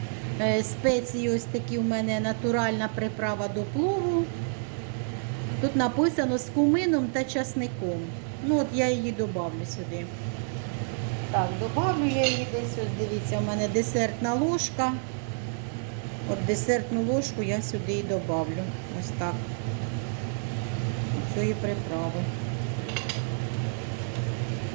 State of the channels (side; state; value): left; silent; digital silence